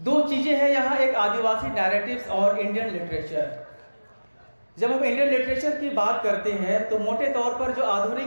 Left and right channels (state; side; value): inverted; both; correlation -1.00